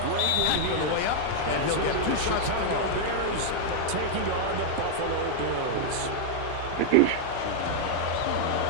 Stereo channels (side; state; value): both; different; correlation -0.01